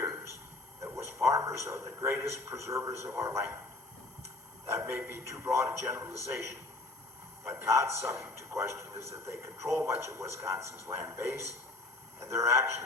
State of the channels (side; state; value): right; quieter; 3.0 dB